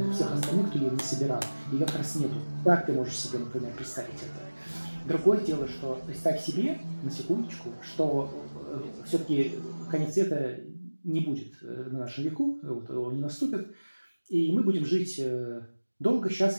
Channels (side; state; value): both; inverted; correlation -1.00